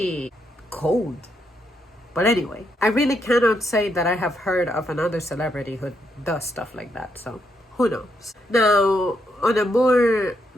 cold? But anyway, I really cannot say that I have heard of another celebrity who does stuff like that, so who knows? Now, on a more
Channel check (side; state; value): both; normal; correlation 0.78